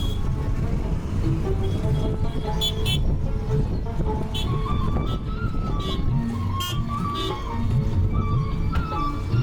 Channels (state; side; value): identical; both; correlation 1.00